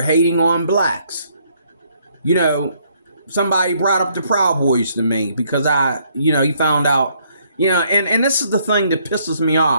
hating on blacks. Somebody brought up the Proud Boys to me because he found out, and this is the thing that pisses me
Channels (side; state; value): both; inverted; correlation -0.68